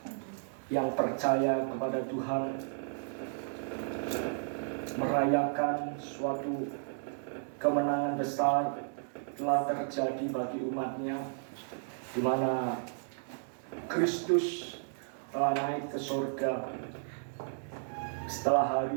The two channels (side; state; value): left; silent; digital silence